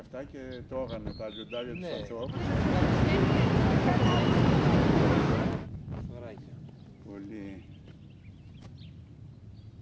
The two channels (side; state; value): both; identical; correlation 1.00